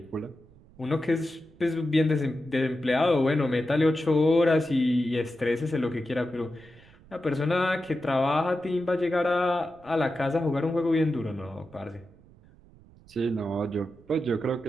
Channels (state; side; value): noise; right; rumble, 25 dB below the sound